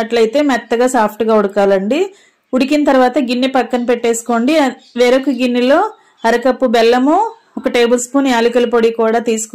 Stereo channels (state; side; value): identical; both; correlation 1.00